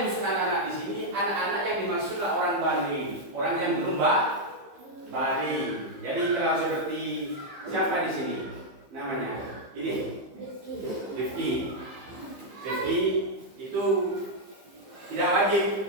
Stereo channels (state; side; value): late; left; 15 ms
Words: dimaksud anak-anak di sini? Anak-anak yang dimaksudlah orang balik, orang yang belum balik. Jadi kalau seperti siapa di sini? Namanya ini Rifki itu tidak